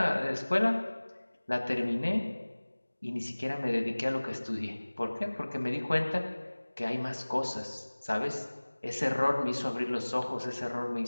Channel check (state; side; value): inverted; both; correlation -1.00